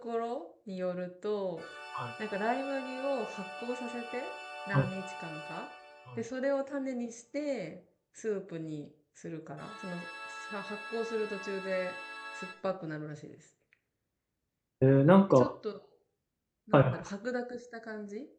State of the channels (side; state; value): both; identical; correlation 1.00